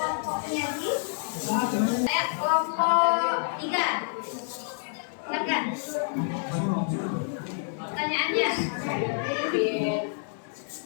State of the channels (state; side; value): silent; right; digital silence